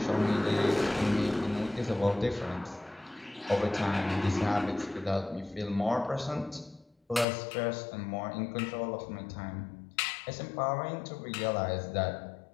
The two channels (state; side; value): drops out; right; at 7.2 s